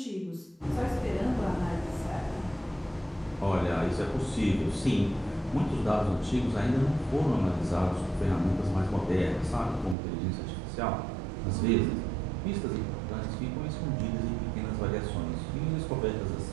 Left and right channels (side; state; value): left; drops out; at 10.0 s